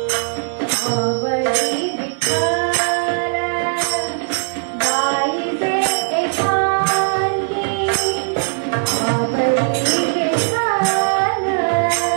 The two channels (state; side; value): silent; left; 67 dB below the other